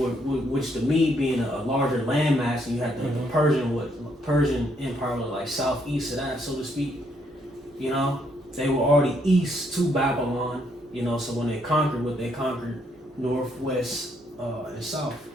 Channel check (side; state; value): both; normal; correlation 0.72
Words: the Mede being a larger landmass, and you had the Persian Empire was like southeast of that, so to speak. They were already east to Babylon. So when they conquered, northwest and south.